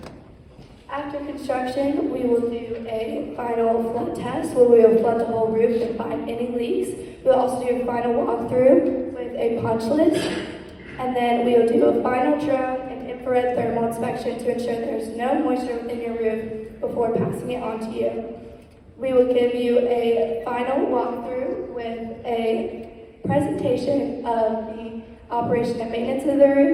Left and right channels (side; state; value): both; identical; correlation 1.00